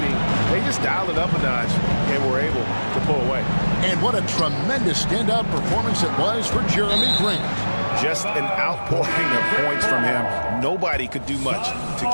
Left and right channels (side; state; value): both; inverted; correlation -1.00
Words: they just dialed it up a notch and were able to pull away. And what a tremendous standout performance it was for Jeremy Grant. Just an outpouring of points from him. Nobody could do much to